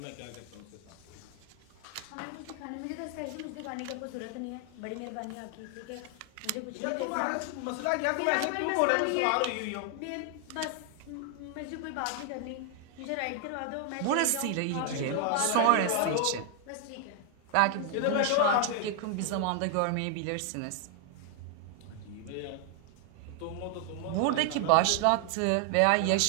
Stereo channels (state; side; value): different; both; correlation 0.00